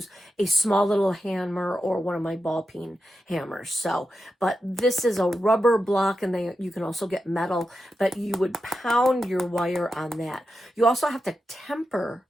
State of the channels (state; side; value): normal; both; correlation 0.89